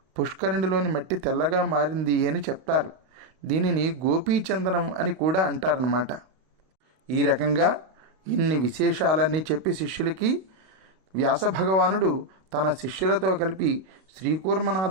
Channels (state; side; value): late; left; 32 ms